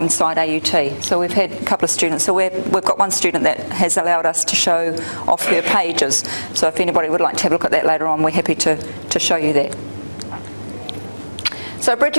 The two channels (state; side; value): inverted; both; correlation -1.00